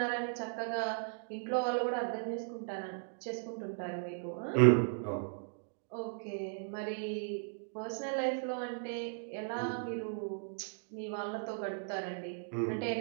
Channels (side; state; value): left; silent; digital silence